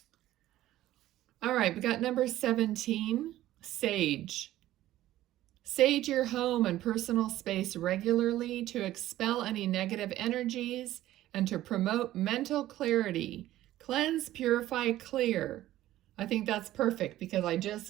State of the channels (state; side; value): quieter; left; 14.4 dB